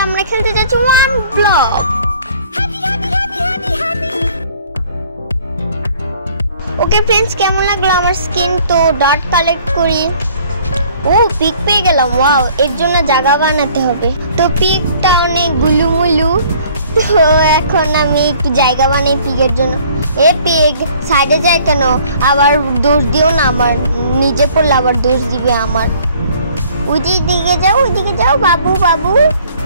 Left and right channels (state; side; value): inverted; both; correlation -0.56